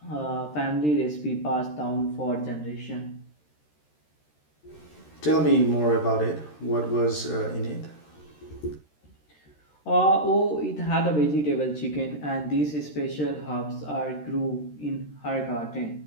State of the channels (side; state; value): right; late; 13 ms